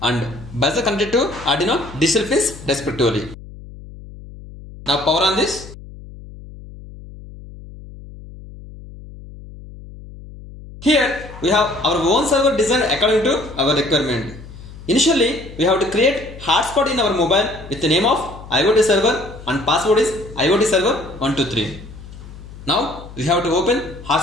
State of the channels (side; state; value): left; noise; hum, 16 dB below the sound